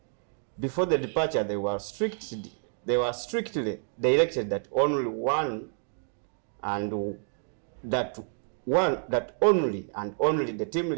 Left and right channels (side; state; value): left; silent; digital silence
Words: Before the departure, they were strictly directed that only the team